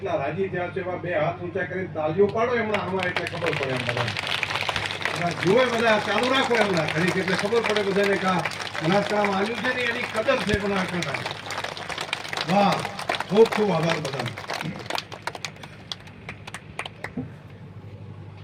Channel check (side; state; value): both; identical; correlation 1.00